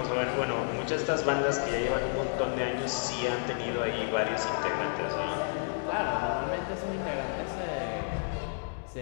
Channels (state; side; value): silent; right; digital silence